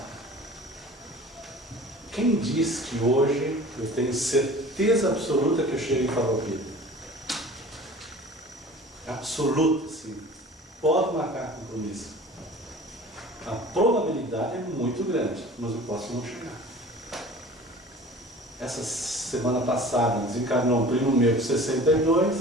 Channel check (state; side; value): normal; both; correlation 0.43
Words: Quem diz que hoje eu tenho certeza absoluta que eu chego em Farroupilha? Absoluta, sim. Pode marcar compromisso. A probabilidade é muito grande, mas eu posso não chegar. Essa semana passada desencarnou um primo meu com 62,